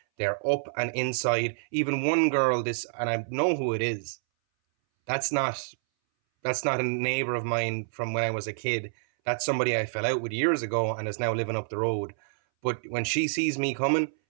they're up and inside. Even one girl, and I know who it is. That's not a neighbor of mine from when I was a kid. That's somebody I fell out with years ago and is now living up the road. But when she sees me coming,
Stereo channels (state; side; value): silent; left; 59 dB below the other